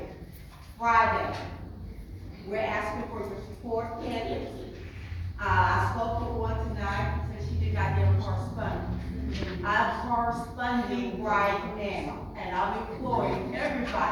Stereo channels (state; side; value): identical; both; correlation 1.00